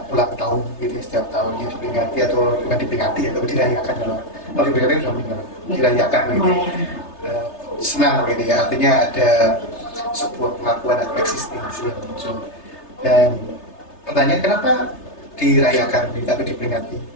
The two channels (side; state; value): right; late; 3.3 ms